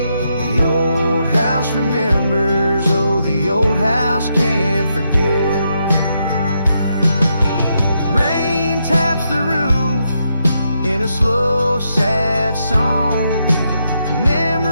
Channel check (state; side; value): inverted; both; correlation -0.81